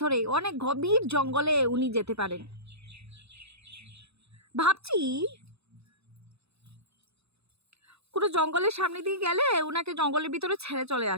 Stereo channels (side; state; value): left; late; 0.79 ms